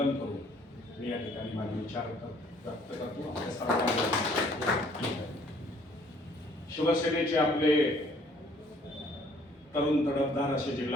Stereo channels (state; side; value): normal; both; correlation 0.60